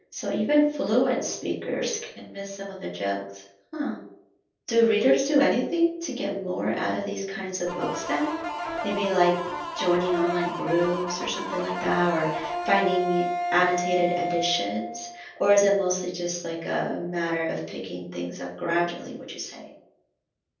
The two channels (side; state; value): both; identical; correlation 1.00